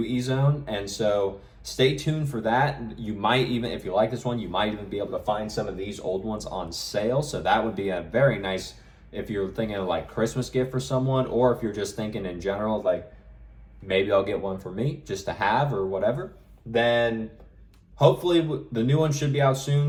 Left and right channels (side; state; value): both; identical; correlation 1.00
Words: Ezone, and so stay tuned for that. You might even, if you like this one, you might even be able to find some of these old ones on sale, so that would be a very nice, if you're thinking of like Christmas gift for someone, or if you're just thinking in general, like maybe I'll get one for me just to have or whatever, then hopefully the new one should be out